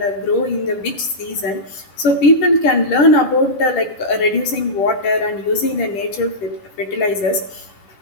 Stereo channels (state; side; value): late; right; 10 ms